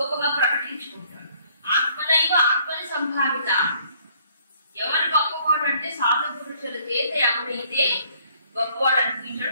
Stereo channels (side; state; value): both; inverted; correlation -0.62